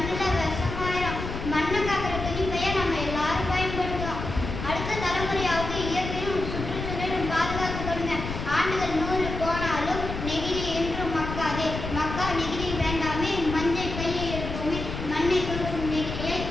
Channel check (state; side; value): noise; left; rumble, 6 dB below the sound